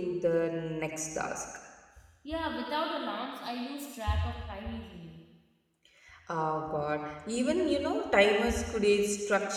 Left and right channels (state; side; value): identical; both; correlation 1.00